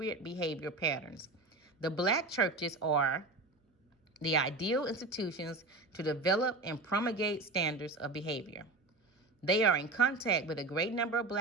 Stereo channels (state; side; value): quieter; left; 3.1 dB